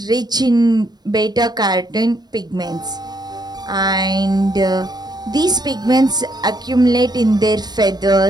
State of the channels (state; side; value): late; left; 0.20 ms